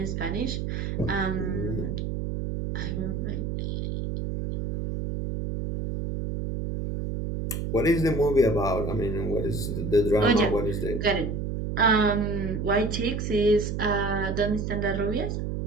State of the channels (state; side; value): noise; right; hum, 3 dB below the sound